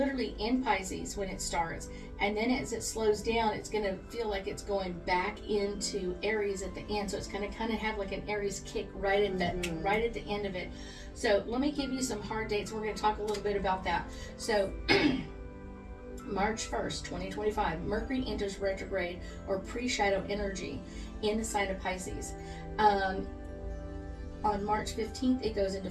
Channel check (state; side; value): identical; both; correlation 1.00